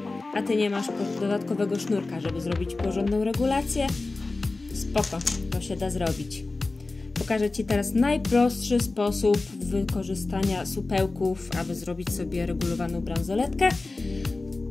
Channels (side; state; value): right; quieter; 3.4 dB